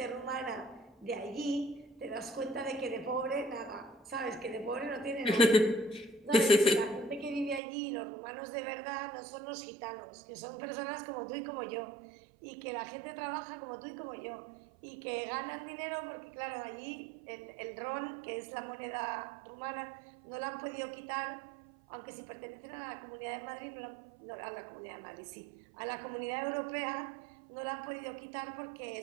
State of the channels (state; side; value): drops out; left; at 7.6 s